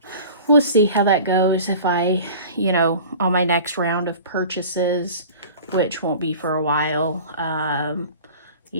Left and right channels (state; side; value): inverted; both; correlation -0.41